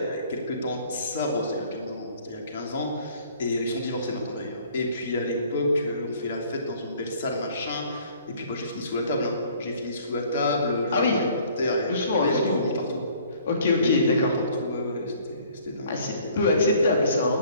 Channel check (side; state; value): both; inverted; correlation -0.56